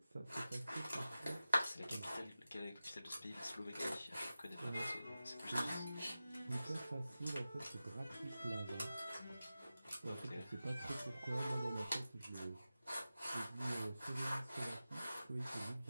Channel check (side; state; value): both; inverted; correlation -0.94